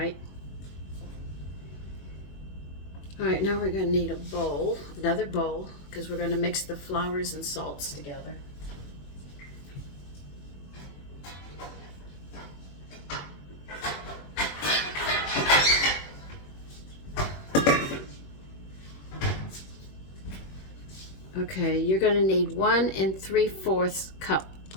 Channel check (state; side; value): late; right; 21 ms